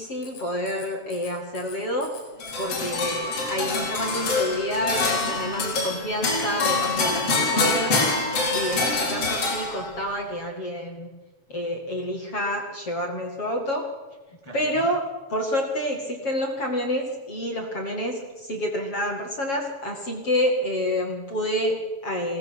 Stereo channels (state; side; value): late; right; 7.3 ms